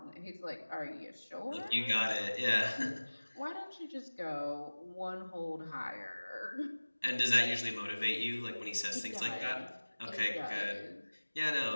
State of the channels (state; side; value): inverted; both; correlation -1.00